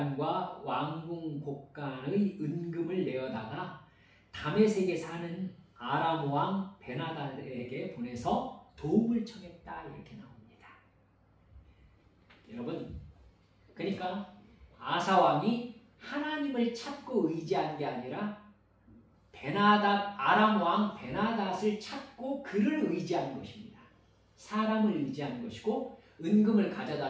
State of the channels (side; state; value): both; identical; correlation 1.00